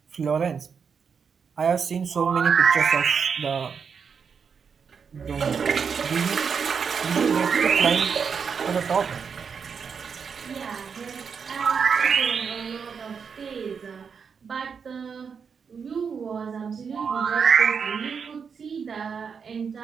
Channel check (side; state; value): left; quieter; 6.2 dB